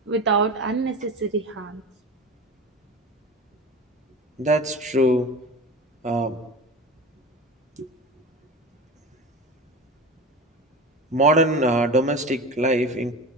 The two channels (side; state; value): both; normal; correlation 0.31